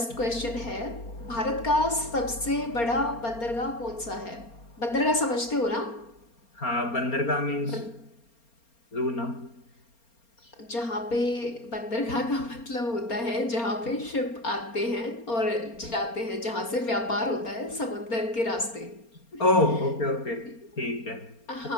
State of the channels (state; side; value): late; right; 4.3 ms